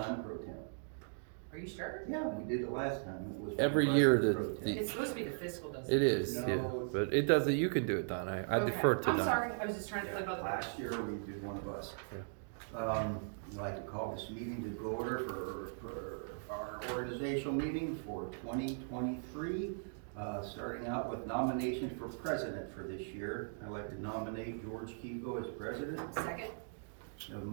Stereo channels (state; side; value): silent; left; digital silence